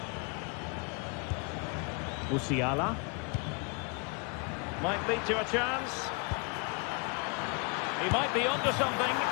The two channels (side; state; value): right; quieter; 33.8 dB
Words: Musiala. Might lead to a chance. He might be onto something.